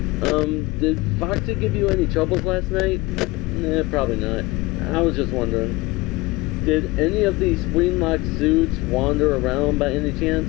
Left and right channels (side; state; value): right; quieter; 21.7 dB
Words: Did Foxy give you any troubles last night? Nah, probably not. I was just wondering. Did any of these spring-locked suits wander around by any